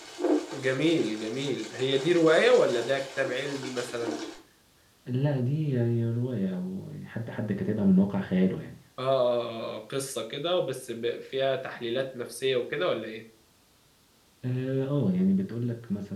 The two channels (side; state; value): both; identical; correlation 1.00